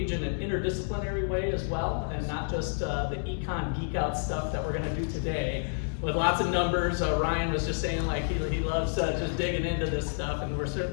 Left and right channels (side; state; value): right; silent; digital silence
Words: in an interdisciplinary way as well, and not just the econ geek out stuff that we're going to do today with lots of numbers. Ryan was just saying like he loves just digging into this stuff, and we're